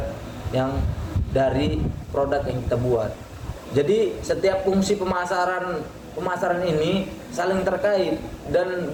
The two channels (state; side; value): identical; both; correlation 1.00